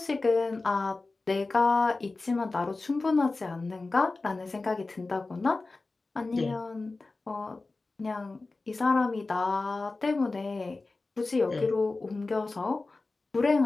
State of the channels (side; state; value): right; quieter; 3.5 dB